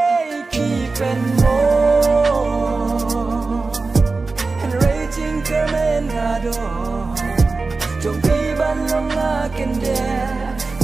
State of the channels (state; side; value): quieter; left; 3.8 dB